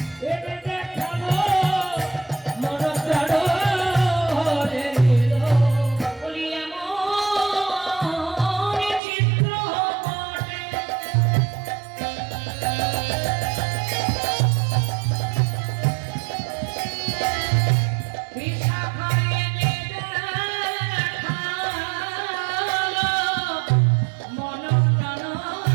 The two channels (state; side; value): drops out; left; at 9.0 s